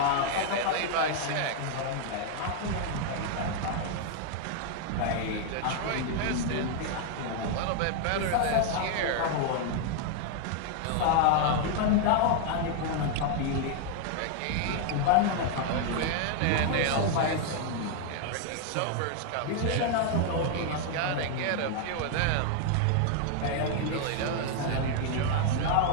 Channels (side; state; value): both; different; correlation 0.00